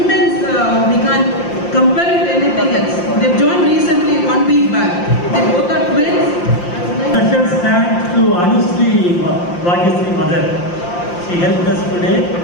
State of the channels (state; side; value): late; right; 5.7 ms